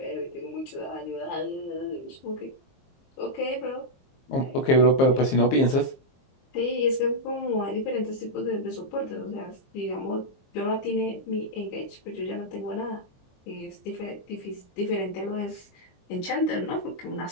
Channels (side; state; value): right; late; 22 ms